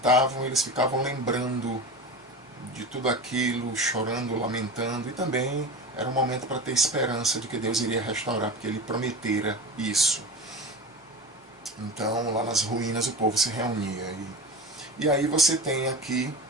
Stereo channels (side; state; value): both; normal; correlation 0.30